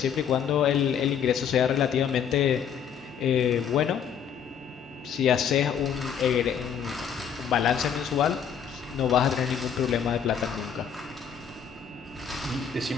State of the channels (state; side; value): quieter; right; 7.9 dB